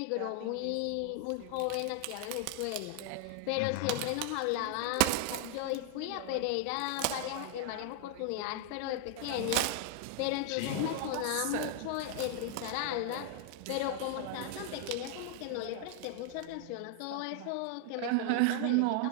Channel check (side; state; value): both; different; correlation 0.00